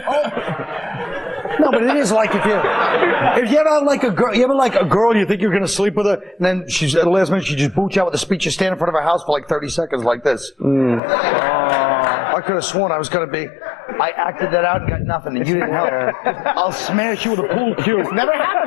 No, but it is like if you ever like a girl, you think you're going to sleep with her, and then she's at the last minute she just boots you out with a speech. You stand in front of her house for like 30 seconds like this. I could have sworn I was going to be. I acted that out and got nothing, and you didn't help. I'll smash you with a pool cue. It's never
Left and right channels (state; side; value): drops out; right; at 11.0 s